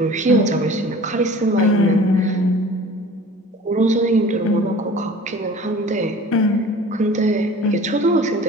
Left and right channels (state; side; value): normal; both; correlation 0.43